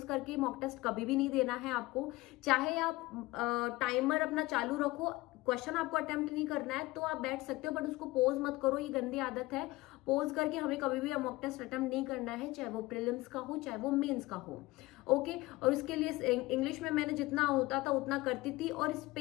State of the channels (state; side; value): quieter; right; 20.1 dB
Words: करके मॉक टेस्ट कभी भी नहीं देना है। आपको चाहे आप टाइमर अपना चालू रखो, क्वेश्चन आपको अटेम्प्ट नहीं करना है तो आप बैठ सकते हो, बट उसको पोज मत करो, ये गंदी आदत है। पोज करके हमें कभी भी मॉक टेस्ट अटेम्प्ट नहीं करना है, चाहे वो प्रीलिम्स का हो चाहे वो मेंस का हो। ओके, और उसके लिए इंग्लिश में मैंने जितना होता था उतना करती थी, और